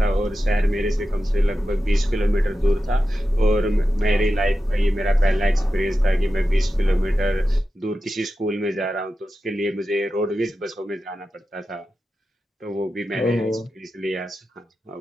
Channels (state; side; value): normal; both; correlation 0.92